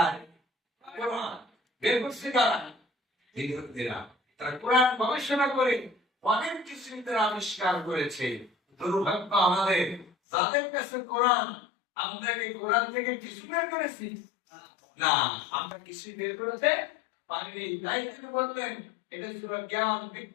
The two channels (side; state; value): right; drops out; at 10.1 s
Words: কোরআন বের করছে কারা? বিজ্ঞানীরা। তারা কোরআন গবেষণা করে অনেক কিছু তারা আবিষ্কার করেছে। দুর্ভাগ্য আমাদের, যাদের কাছে কোরআন, আমরা কি কোরআন থেকে কিছু বের করেছি? না, আমরা কিছু বের করতে পারিনি। তাই তিনি বললেন এটা ছিল জ্ঞান